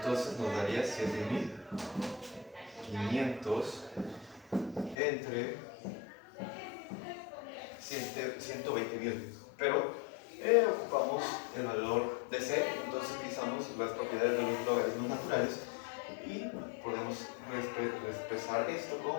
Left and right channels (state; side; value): drops out; right; at 5.0 s